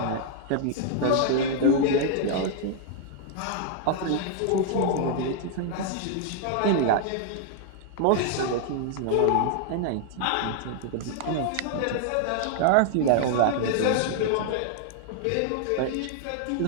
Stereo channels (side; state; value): both; different; correlation 0.00